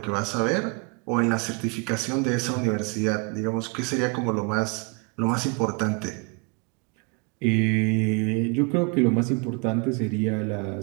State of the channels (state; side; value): quieter; left; 32.2 dB